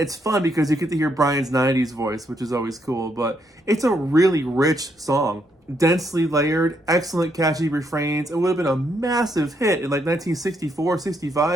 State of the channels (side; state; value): both; normal; correlation 0.75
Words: fun because you get to hear Brian's 90s voice, which is always cool, but it's a really rich song. Densely layered, excellent catchy refrains. It would have been a massive hit in like 1964,